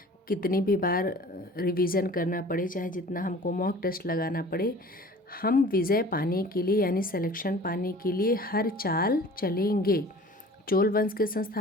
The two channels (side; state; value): both; normal; correlation 0.45